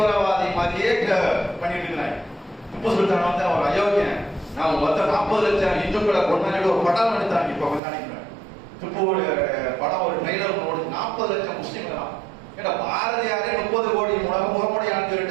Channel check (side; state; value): left; drops out; at 7.8 s